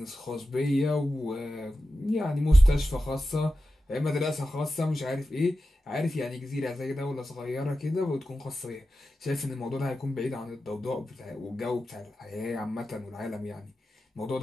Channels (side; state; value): both; normal; correlation 0.92